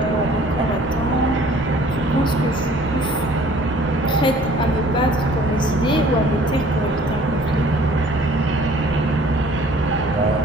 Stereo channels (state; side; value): normal; both; correlation 0.53